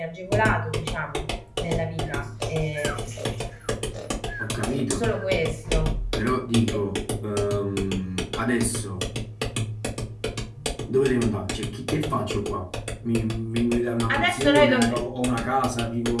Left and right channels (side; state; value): both; identical; correlation 1.00